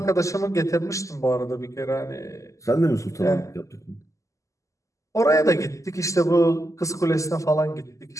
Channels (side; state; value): right; late; 0.16 ms